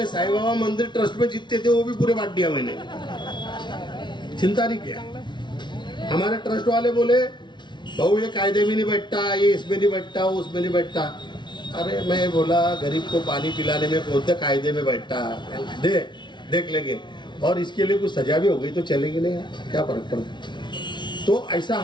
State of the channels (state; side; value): late; right; 0.22 ms